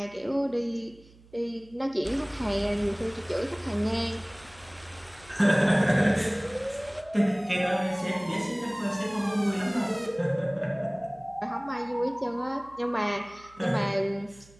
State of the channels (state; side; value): noise; right; hum, 25 dB below the sound